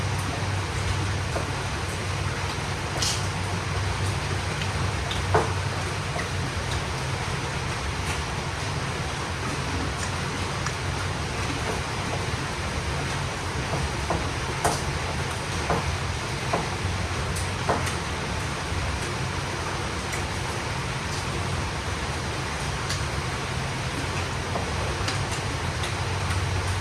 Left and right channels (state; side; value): identical; both; correlation 1.00